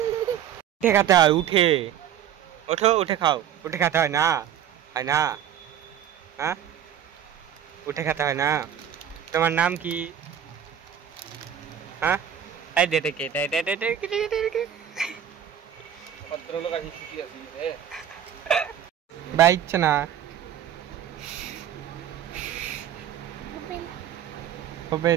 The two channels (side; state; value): left; quieter; 9.7 dB